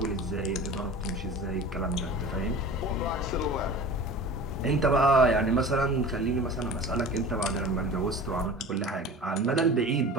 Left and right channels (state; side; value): normal; both; correlation 0.38